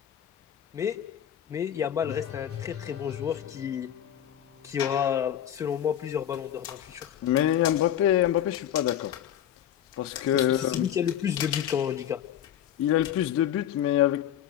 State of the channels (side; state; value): right; quieter; 10.5 dB